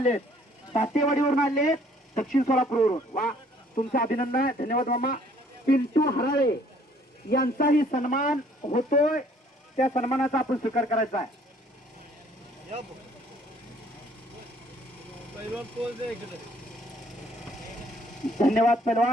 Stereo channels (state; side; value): normal; both; correlation 0.60